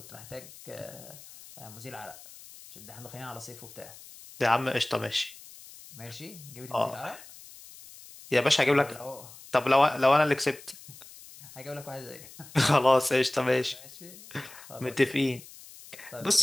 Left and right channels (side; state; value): left; noise; hiss, 18 dB below the sound